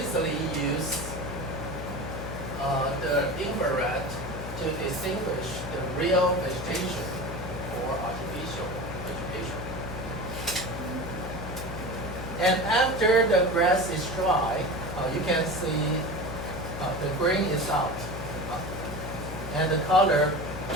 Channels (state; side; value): noise; left; hum, 8 dB below the sound